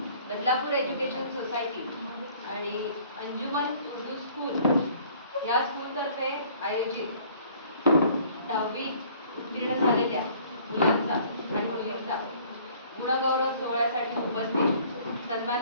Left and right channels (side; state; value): both; inverted; correlation -0.55